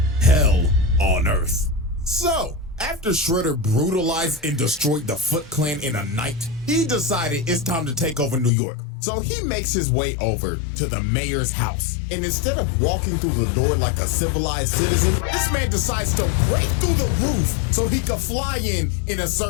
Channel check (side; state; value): right; drops out; at 8.5 s